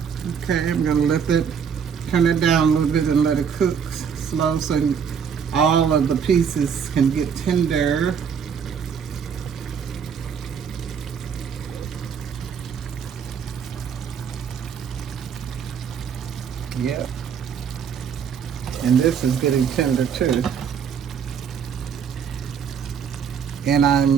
Okay, I'm gonna turn it down a little bit and let it cook slow so all of the pieces can get tender. Yep. And this is getting tender too. And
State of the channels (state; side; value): quieter; left; 7.1 dB